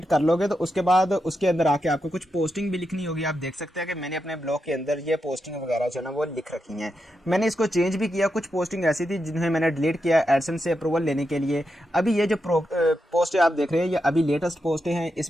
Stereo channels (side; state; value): both; normal; correlation 0.86